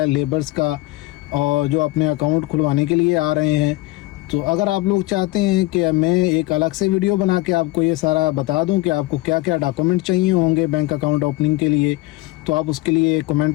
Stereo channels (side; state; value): right; quieter; 19.0 dB